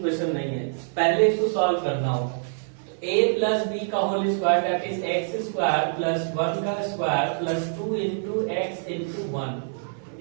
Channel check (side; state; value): left; silent; 61 dB below the other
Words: नहीं है। पहले इसको सॉल्व करना होगा। तो a प्लस बी का whole square that is x square plus 1 का square plus 2 into x into 1